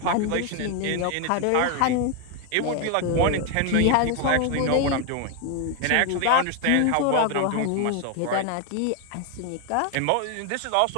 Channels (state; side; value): different; both; correlation 0.01